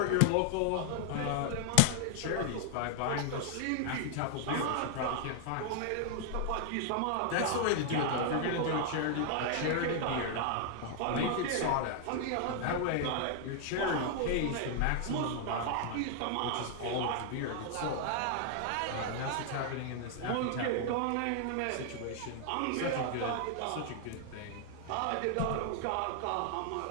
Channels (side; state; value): both; different; correlation 0.00